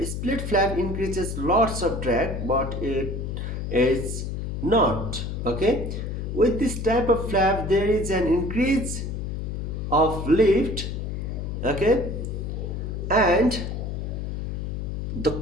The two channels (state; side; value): noise; left; hum, 4 dB below the sound